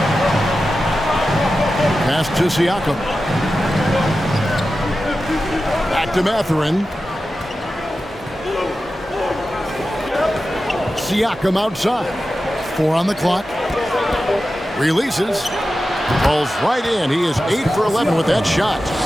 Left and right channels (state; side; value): normal; both; correlation 0.93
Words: Pass to Siakam. Back to Mathurin. Siakam outside. 4 on the clock. Releases. Falls right in. He is 8 for 11 with that shot.